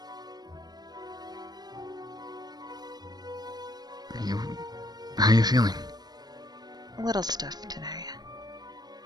How are you feeling? A little stiff today.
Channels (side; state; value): left; late; 0.19 ms